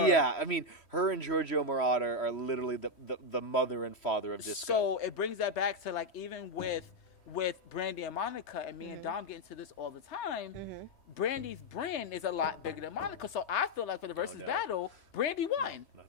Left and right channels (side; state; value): right; late; 3.3 ms